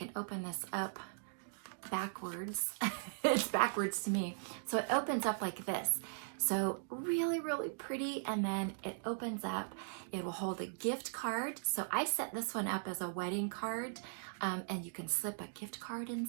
open this up backwards. It's backwards to me. So it opens up like this. So really, really pretty. And then it opens up. It will hold a gift card. So I set this one up as a wedding card. And you can slip a gift card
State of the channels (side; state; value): left; silent; digital silence